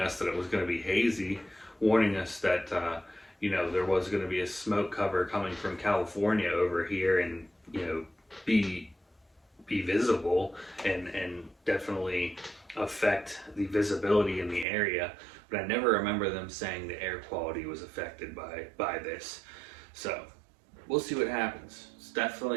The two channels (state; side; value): drops out; left; at 14.7 s